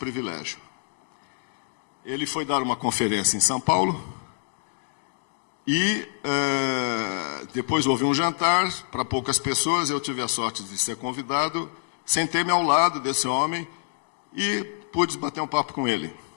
Ele foi dar uma conferência em São Paulo e depois houve um jantar para poucas pessoas. Eu tive a sorte de ser convidado, sentei-me ao lado desse homem e pude bater um papo com ele.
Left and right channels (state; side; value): silent; right; 61 dB below the other